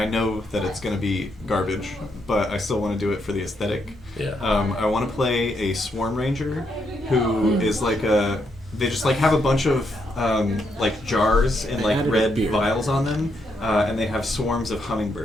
know that it's going to be garbage, but I still want to do it for the aesthetic. Yeah. I want to play a Swarm Ranger who is like a... They just like have a bunch of like jars and like red vials on them, and they have swarms of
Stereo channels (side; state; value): both; normal; correlation 0.78